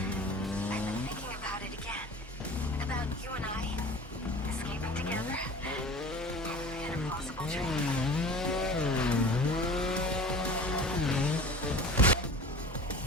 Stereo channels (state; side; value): normal; both; correlation 0.39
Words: I've been thinking about it again. About you and I escaping together in a possible dream.